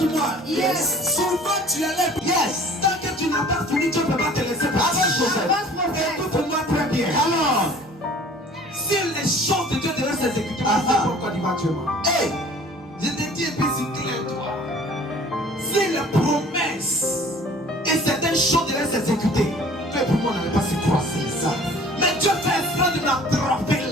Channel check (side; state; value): both; normal; correlation 0.49